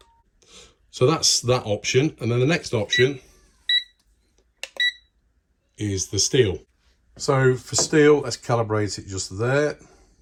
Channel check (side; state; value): both; identical; correlation 1.00